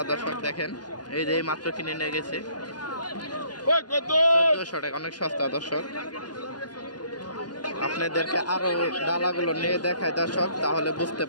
দর্শক দেখেন। এই যে মাত্র কিনে নিয়ে গেছে 1400 টাকা, অনেক সস্তা দর্শক। আপনাদেরকে আরো ডালাগুলো নিয়ে দেখায় দর্শক, তাহলে বুঝতে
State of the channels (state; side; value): late; right; 0.70 ms